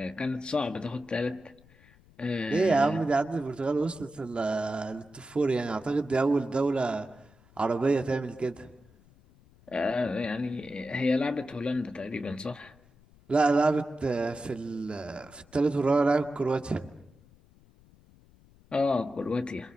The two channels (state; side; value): noise; left; rumble, 28 dB below the sound